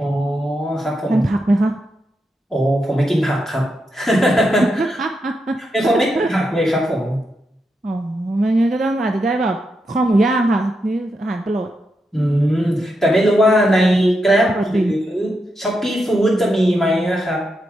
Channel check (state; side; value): normal; both; correlation 0.85